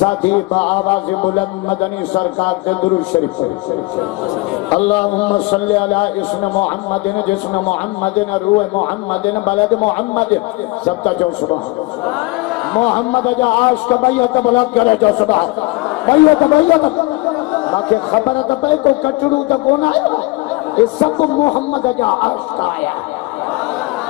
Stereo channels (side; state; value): right; quieter; 23.6 dB